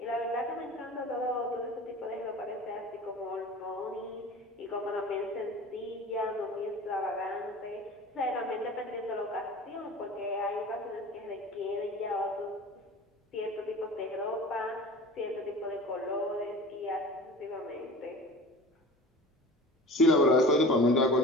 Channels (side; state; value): both; normal; correlation 0.38